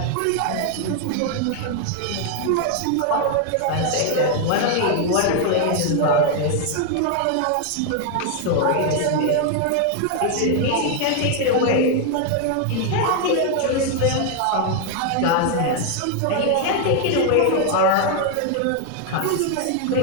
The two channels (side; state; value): both; different; correlation 0.00